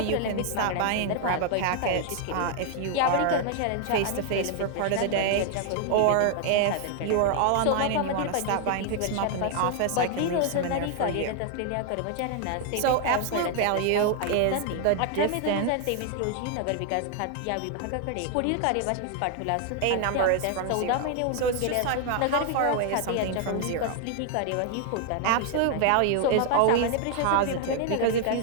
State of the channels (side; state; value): both; different; correlation 0.00